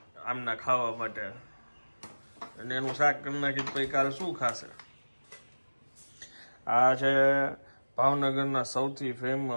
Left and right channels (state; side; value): inverted; both; correlation -1.00